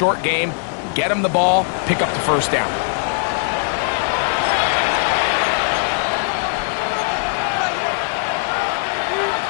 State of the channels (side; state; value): right; silent; digital silence